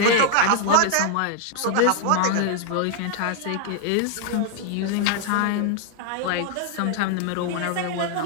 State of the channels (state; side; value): different; both; correlation 0.00